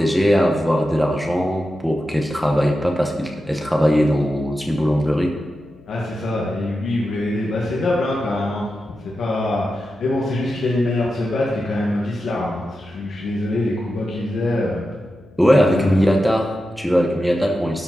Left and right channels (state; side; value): noise; left; hum, 25 dB below the sound